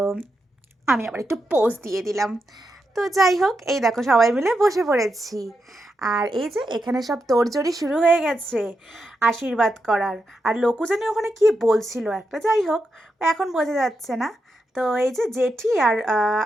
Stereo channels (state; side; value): normal; both; correlation 0.85